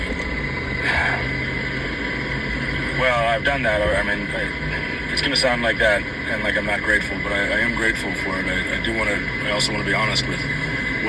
well, I've done that. I mean, it's going to sound like that and like I'm not grateful, but I am grateful for it. I also want to be honest with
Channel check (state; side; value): identical; both; correlation 1.00